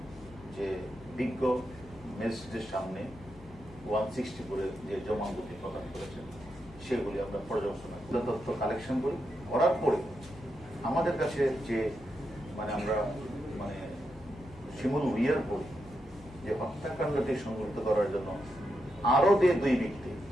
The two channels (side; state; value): left; noise; hum, 20 dB below the sound